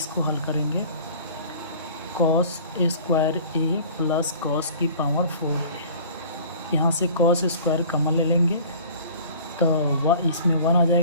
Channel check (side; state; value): both; inverted; correlation -0.46